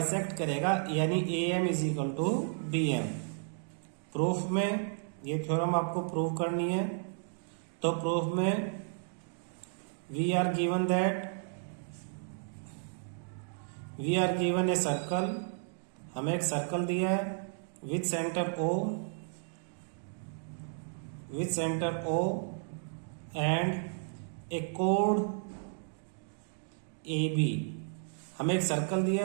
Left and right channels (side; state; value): left; silent; digital silence